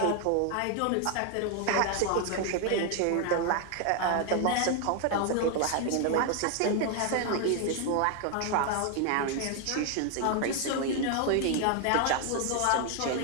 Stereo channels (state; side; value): different; both; correlation 0.01